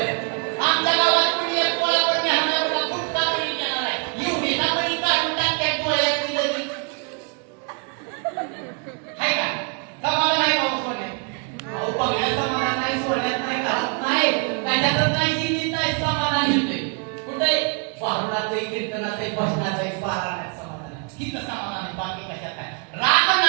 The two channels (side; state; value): left; quieter; 35.9 dB